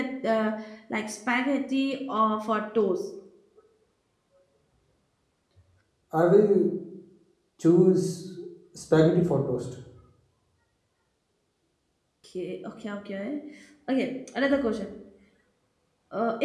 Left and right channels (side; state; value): both; identical; correlation 1.00